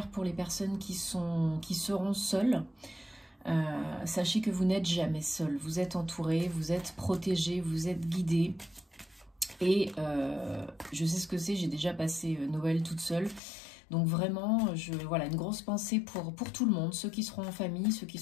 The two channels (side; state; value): right; drops out; at 13.4 s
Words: pour les personnes qui seront seules. Sachez que vous n'êtes jamais seul, vous êtes entouré, vous êtes protégé, vous êtes guidé. Et je sais ce que c'est, j'ai déjà passé Noël toute seule. Donc vraiment, voilà, une grosse pensée pour tout le monde, ceux qui seront en famille, ceux qui